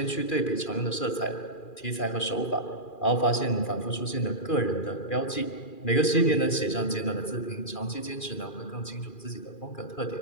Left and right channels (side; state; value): right; late; 2.4 ms